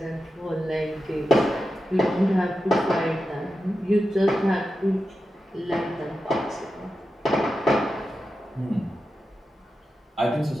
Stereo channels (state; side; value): normal; both; correlation 0.91